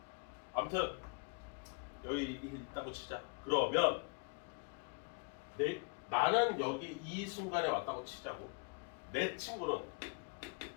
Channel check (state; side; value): quieter; right; 32.7 dB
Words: 아무튼 여기 이게 있다고 치자. 그러면 나는 여기 이 순간에 왔다고 치자고. 내 친구는